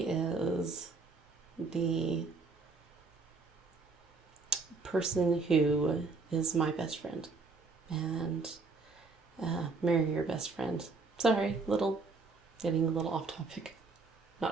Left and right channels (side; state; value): left; quieter; 4.0 dB